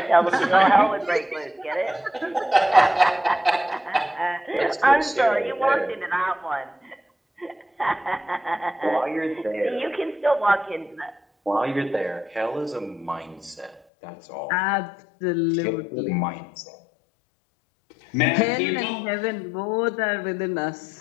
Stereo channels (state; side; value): drops out; right; at 13.8 s